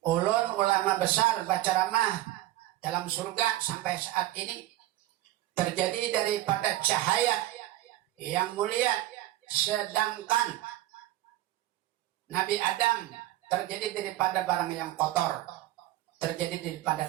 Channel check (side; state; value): left; quieter; 15.4 dB